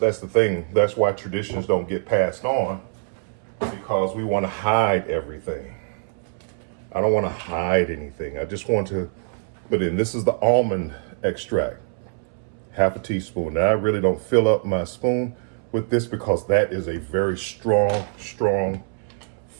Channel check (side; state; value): left; silent; 63 dB below the other